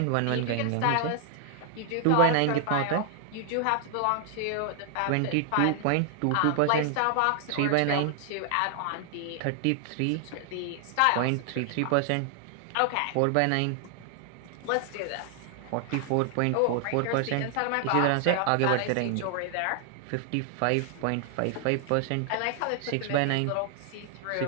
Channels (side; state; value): both; different; correlation 0.00